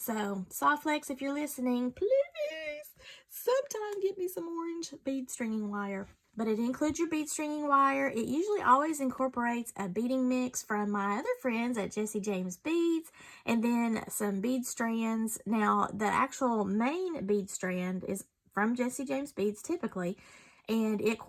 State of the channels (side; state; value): both; identical; correlation 1.00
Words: Softflex, if you're listening, please sometime get me some orange bead stringing wire. But it includes your bead stringing wire. It usually always incorporates a beading mix from my other friends at Jesse James Beads, and then some bead strands. Now, the actual main bead strand is from Jesse James Beads typically, and it